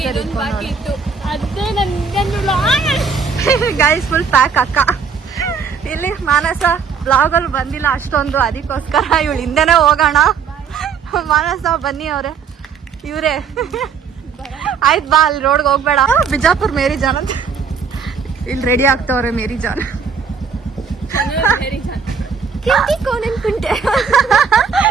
ಅದೇ ಗೈಸ್ ಫುಲ್ ಪ್ಯಾಕ್ ಅಕ್ಕ. ಇಲ್ಲಿ ಮಾನಸ ಬ್ಲಾಗ್ ಅಲ್ಲಿ ಬಂದಿಲ್ಲ ಅಷ್ಟೊಂದು, ಅದಕ್ಕೋಸ್ಕರ ಇವಳು ಹಿಂದೆನೆ ಹೋಗೋಣ. ಮಾನಸ ಬನ್ನಿ ಅವ್ರೆ, ಇವ್ರೆ ಆಯ್ತು ಬಾ, ಅಲ್ಲಿ ರೋಡ್ಗೆ ಹೋಗ್ಬೇಡ. ಬಿಜಾಪುರ್ ಮೇರಿ ಜಾನ್ ಅಂತ ಇಲ್ಲಿ ರೆಡಿ ಆಗ್ತವ್ರೆ. ಮೇರಿ ಜಾನ್ ಕೆಂಪಿ ಕೋಣನ್ ಕುಂಟೆ,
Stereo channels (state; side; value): quieter; left; 6.0 dB